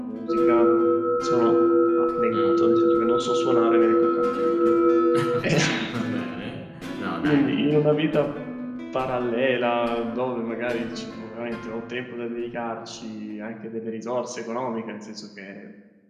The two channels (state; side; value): identical; both; correlation 1.00